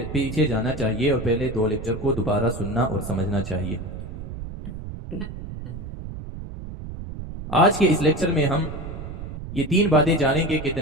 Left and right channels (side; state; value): right; noise; rumble, 9 dB below the sound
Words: जाना चाहिए और पहले 2 लेक्चर को दोबारा सुनना और समझना चाहिए। आज के इस लेक्चर में हम ये 3 बातें जानेंगे कि